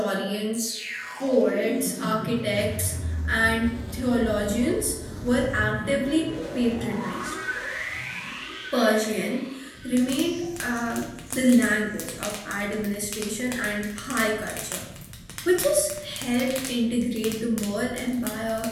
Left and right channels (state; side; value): identical; both; correlation 1.00